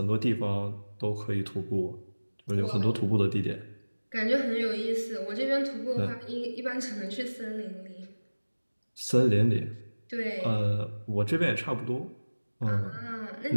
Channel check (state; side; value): inverted; both; correlation -1.00